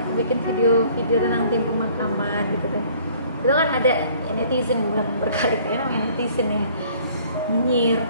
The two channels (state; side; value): inverted; both; correlation -0.56